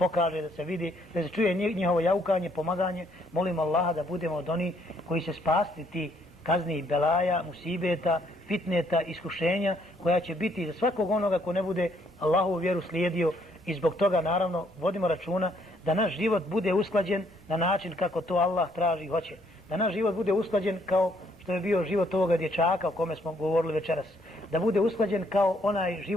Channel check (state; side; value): normal; both; correlation 0.69